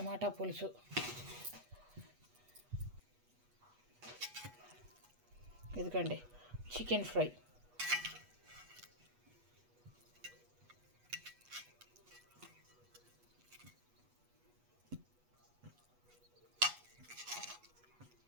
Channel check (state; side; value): late; left; 8.2 ms